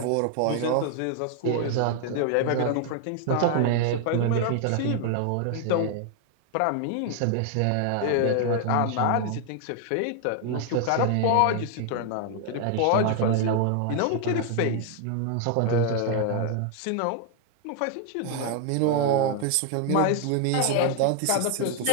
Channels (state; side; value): different; both; correlation 0.00